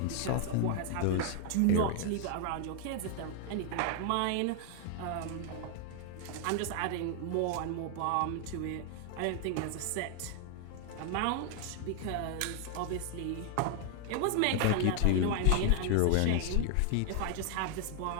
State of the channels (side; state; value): both; different; correlation 0.00